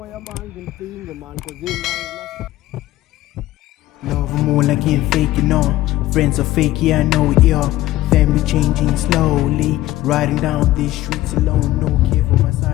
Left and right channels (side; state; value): right; quieter; 15.7 dB